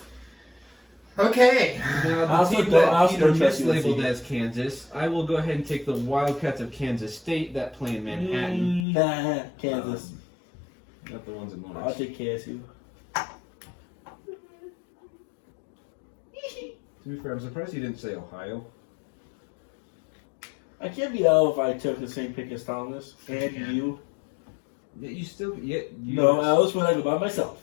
Okay. Now, I the also team don't- that I also Peter don't trust mislabeled USC. as Kansas, I will go ahead and take the Wildcats of Kansas State that play in Manhattan. Kansas. Not the ones in I'll Lawrence. take KSU. To be fair, I'm surprised he didn't say Ohio. I can't be out if I took the same pick as Thomas and Yeah. you. Yeah, you still. Yeah, you No, I was when I go by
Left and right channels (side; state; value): right; drops out; at 8.8 s